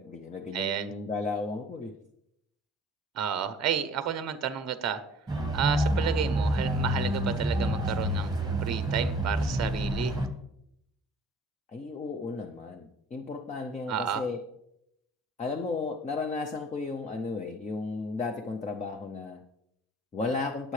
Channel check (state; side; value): normal; both; correlation 0.51